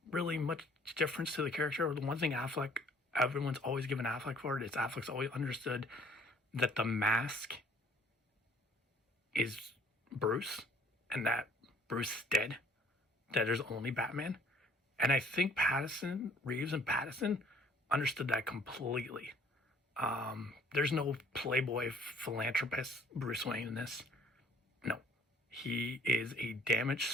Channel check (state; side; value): normal; both; correlation 0.57